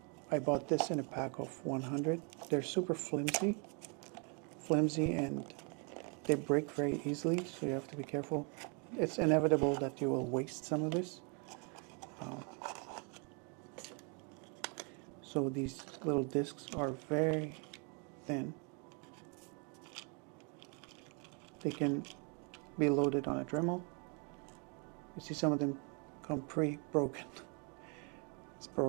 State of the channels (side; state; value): left; quieter; 35.9 dB